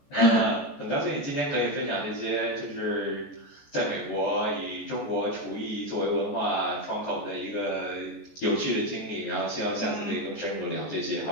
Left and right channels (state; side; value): late; right; 14 ms